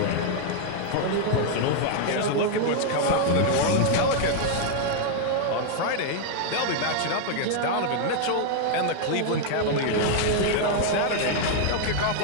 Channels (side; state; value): both; different; correlation 0.00